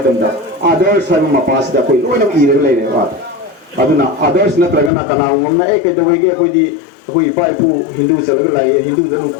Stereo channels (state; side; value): drops out; right; at 4.9 s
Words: others har ma pasida koi loina ire leire wa aduna others na tragana kana umna e ke dawai ge koi di koi pai pu hindu salaga lai hindu da